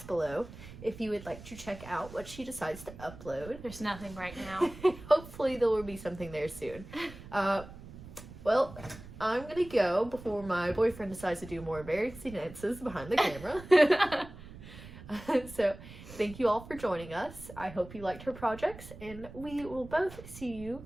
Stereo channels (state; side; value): noise; right; rumble, 15 dB below the sound